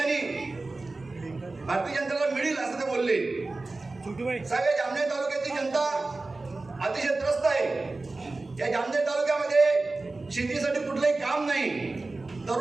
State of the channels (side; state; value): left; quieter; 3.3 dB